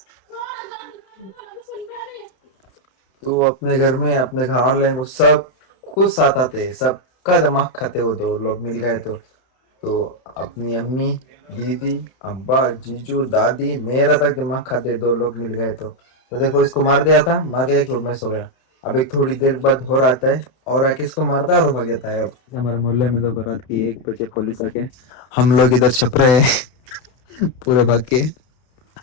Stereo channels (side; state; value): right; late; 32 ms